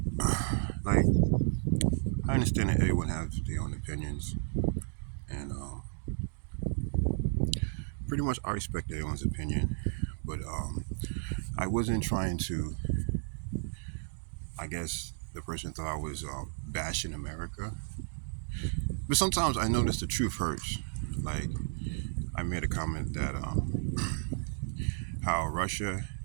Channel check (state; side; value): silent; left; digital silence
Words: Like, I understand that everyone has their own opinions, and pretty much I respect everyone's opinion. But I wasn't trying to. I guess the person thought I was bashing America. But sometimes I notice the truth hurts. Like, I made a comment that how